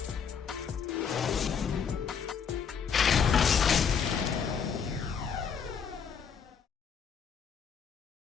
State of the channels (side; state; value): right; quieter; 6.8 dB